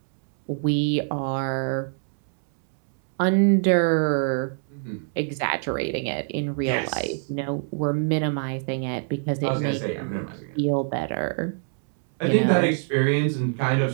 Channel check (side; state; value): left; silent; 62 dB below the other